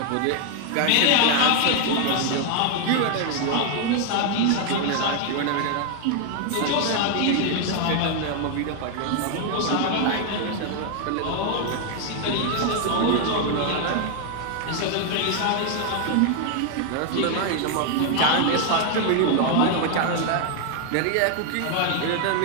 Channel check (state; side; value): different; both; correlation 0.00